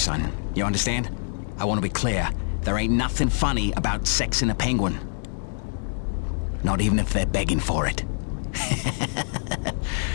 You understand? I want to be clear. There ain't nothing funny about sexing a penguin. Not even if they're begging for it.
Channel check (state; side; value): silent; right; digital silence